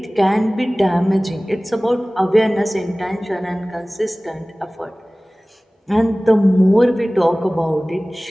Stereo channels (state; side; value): normal; both; correlation 0.98